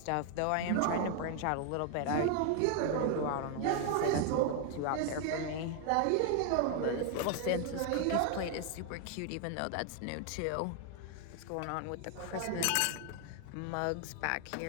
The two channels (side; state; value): both; different; correlation 0.00